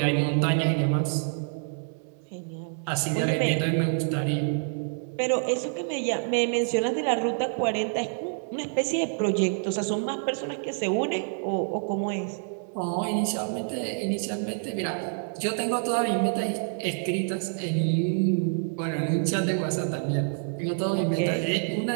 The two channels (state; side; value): silent; left; 60 dB below the other